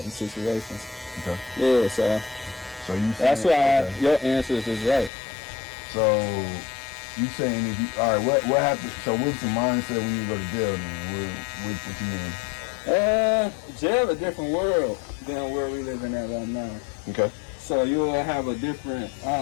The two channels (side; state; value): right; drops out; at 5.1 s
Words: situations. Okay. Yeah, so you that's why your answers is right. So you saying all right? What happened? So what's the mindset when you go to jail? Then what you mean? Jail a different world than where we living at right now. Okay. So you'll have a different